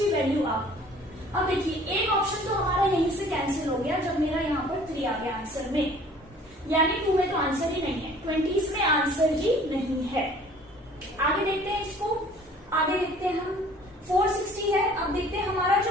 वैल्यू आप। अब देखिए एक ऑप्शन तो हमारा यहीं से कैंसिल हो गया जब मेरा यहाँ पर 3 आ गया आंसर में, यानी 2 में तो आंसर ही नहीं है, 20s में आंसर ही नहीं है। आगे देखते हैं इसको, आगे देखते हैं हम 460 है। अब देखते हैं हमारा जो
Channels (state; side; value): normal; both; correlation 0.51